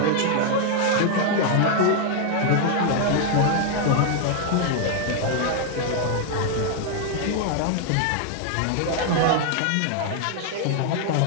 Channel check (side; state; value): both; different; correlation 0.00